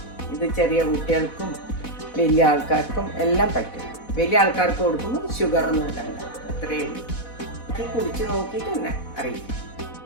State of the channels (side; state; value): right; late; 4.1 ms